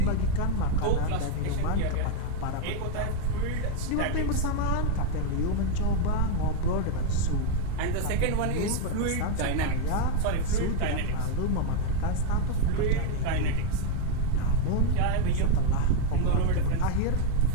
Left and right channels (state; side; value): different; both; correlation 0.01